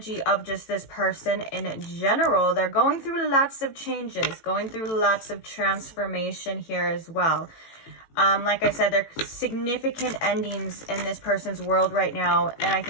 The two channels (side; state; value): right; late; 18 ms